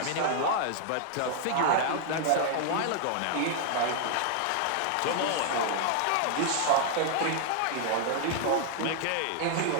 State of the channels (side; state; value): both; different; correlation -0.01